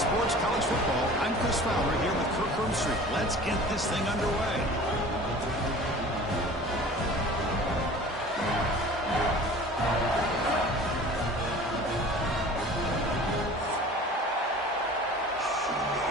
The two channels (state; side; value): normal; both; correlation 0.43